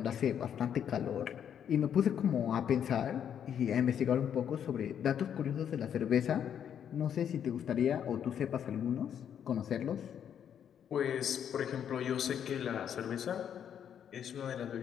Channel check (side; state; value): right; quieter; 8.9 dB